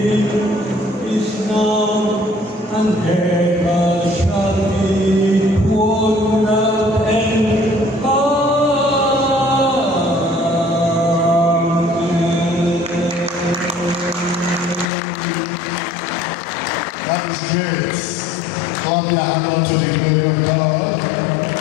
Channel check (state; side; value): drops out; right; at 14.9 s